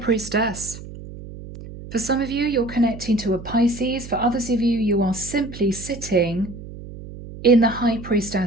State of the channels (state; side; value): noise; right; hum, 13 dB below the sound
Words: For some of you, you're connecting to a Pisces. For others of you, you are simply sitting in the High